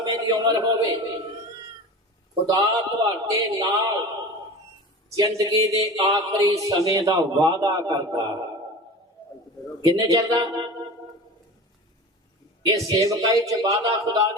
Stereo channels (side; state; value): both; normal; correlation 0.34